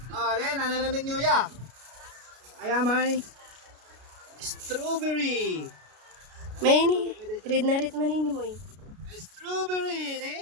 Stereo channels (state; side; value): late; left; 33 ms